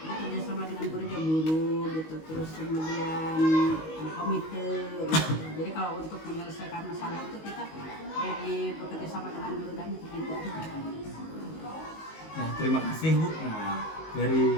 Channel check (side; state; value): right; late; 19 ms